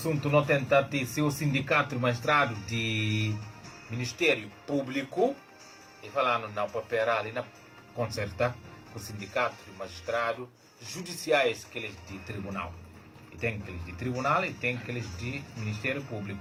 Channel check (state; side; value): identical; both; correlation 1.00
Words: não tenta ter seu sindicato de magistrado de Ministério Público e falando na papel ali na concerta com o sindicato de magistrado judiciais que eles de tribunal. E tem aqueles de tribunal e tem aqueles de Ministério